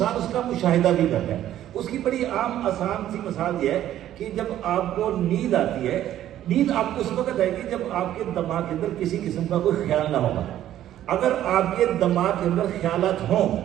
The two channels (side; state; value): left; quieter; 12.3 dB